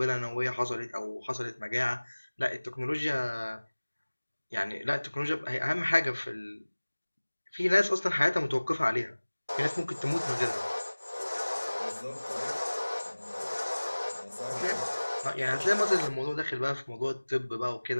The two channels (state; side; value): inverted; both; correlation -1.00